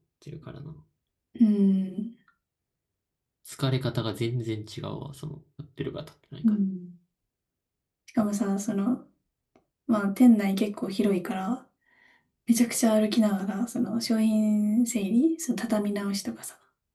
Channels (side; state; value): both; identical; correlation 1.00